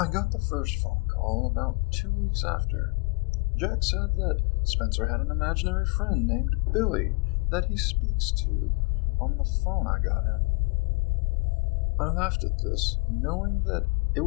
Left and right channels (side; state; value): right; quieter; 28.9 dB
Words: got the first phone call about 2 weeks after. Jack said that Spencer had an imaginary friend named Billy that he speaks to on the phone I got him. I laughed at this, knowing that it